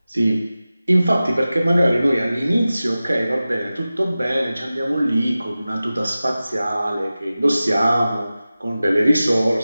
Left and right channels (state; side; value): inverted; both; correlation -0.96